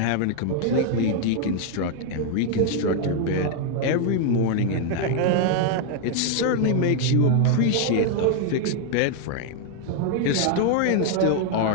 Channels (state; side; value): different; both; correlation 0.00